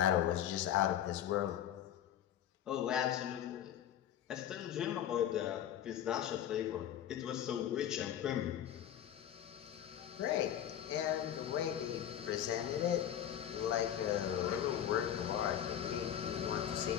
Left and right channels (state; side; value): quieter; right; 10.4 dB